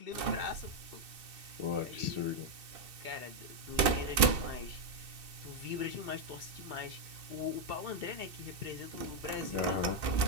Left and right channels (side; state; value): left; late; 2.7 ms